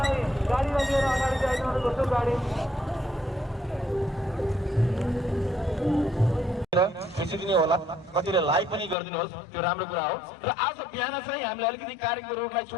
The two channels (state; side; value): drops out; right; at 9.0 s